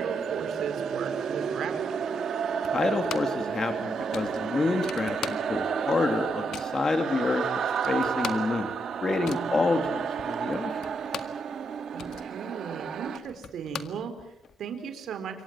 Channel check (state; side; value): normal; both; correlation 0.79